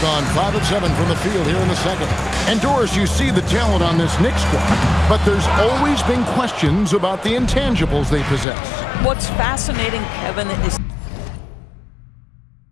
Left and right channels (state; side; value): drops out; right; at 8.5 s